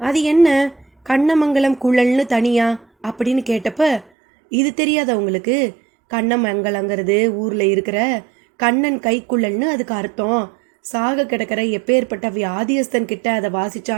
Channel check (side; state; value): left; drops out; at 4.0 s